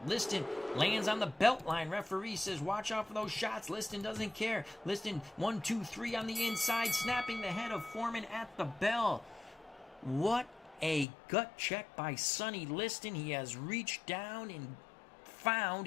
Liston lands on the belt line. Referee says, watch out for those shots. Liston doesn't care. Liston, 1, 2, 3 on the inside, snapping the head of Foreman at the bell. What a gut check by Sonny Liston. He has reached down and found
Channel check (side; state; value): right; drops out; at 11.1 s